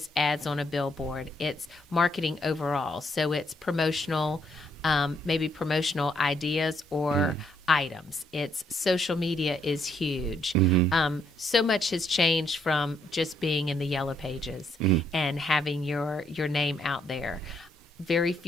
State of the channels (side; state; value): both; normal; correlation 0.72